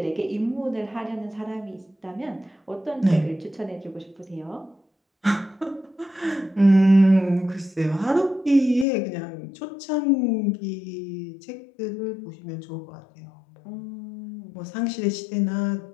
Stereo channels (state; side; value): drops out; right; at 8.8 s